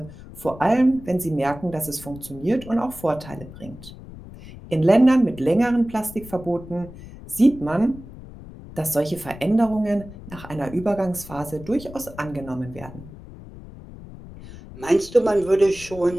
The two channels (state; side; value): noise; left; rumble, 16 dB below the sound